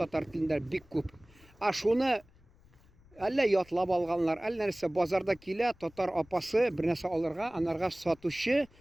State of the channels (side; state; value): left; noise; rumble, 28 dB below the sound